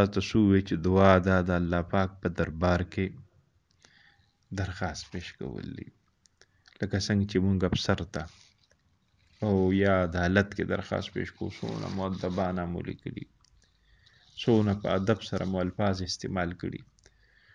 ته څه ووایي چې دعا دا د الله پاک په دربار کې درخواست پیش کول دي، لکه څنګه چې مونږ افسر ته او یا عدالت کې درخواست پیش کوو، څونه مؤدبانه مو لیکلي، څونه په ادب سره مو الفاظ استعمال کړي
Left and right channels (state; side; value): identical; both; correlation 1.00